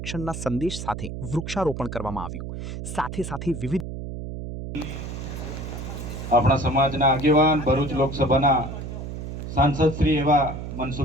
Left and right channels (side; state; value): right; noise; hum, 7 dB below the sound